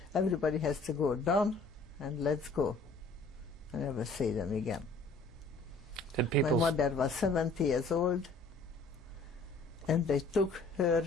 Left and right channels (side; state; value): right; quieter; 3.4 dB